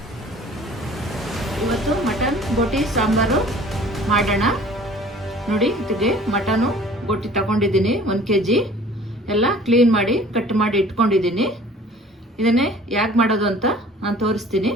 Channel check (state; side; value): normal; both; correlation 0.49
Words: ಇವತ್ತು ಮಟನ್ ಬೋಟಿ ಸಾಂಬಾರು ಮಾಡೋಣ. ನೋಡಿ, ಇದಕ್ಕೆ ಮಟನು ಬೋಟಿ ತಗೊಂಡಿದ್ದೀನಿ 1 kg. ಎಲ್ಲ ಕ್ಲೀನ್ ಮಾಡಿ ಕಟ್ ಮಾಡಿ ಇಟ್ಕೊಂಡಿದ್ದೀನಿ. ಇದನ್ನೇ ಯಾಕೆ ಮಾಡೋದು ಅಂತ ನಾನು ತೋರಿಸ್ತೀನಿ.